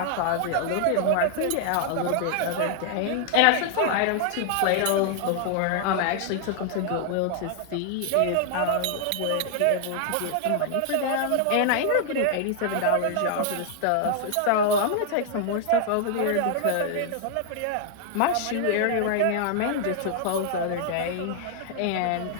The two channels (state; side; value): different; both; correlation 0.00